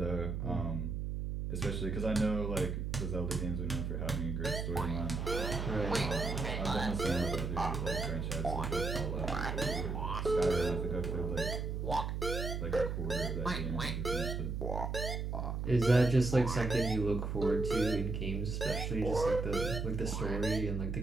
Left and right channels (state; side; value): noise; right; hum, 2 dB below the sound